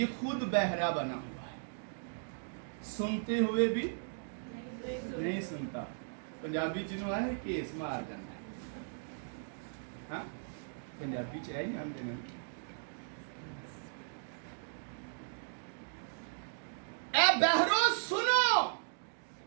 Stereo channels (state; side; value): silent; left; digital silence